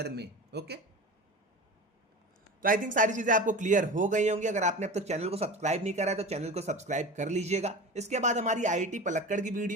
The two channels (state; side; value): normal; both; correlation 0.31